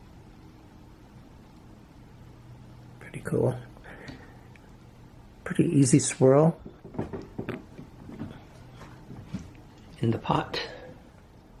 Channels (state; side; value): identical; both; correlation 1.00